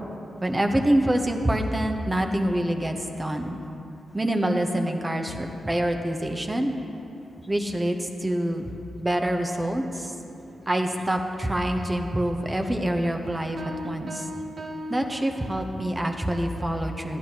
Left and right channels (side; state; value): both; normal; correlation 0.95